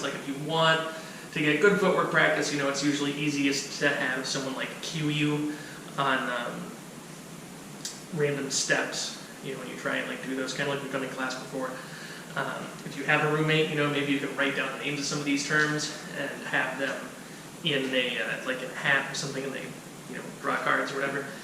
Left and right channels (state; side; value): identical; both; correlation 1.00